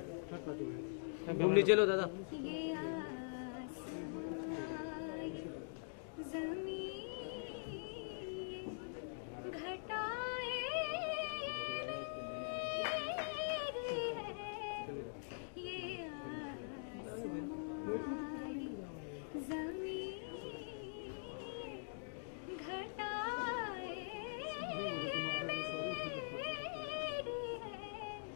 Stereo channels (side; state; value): right; silent; digital silence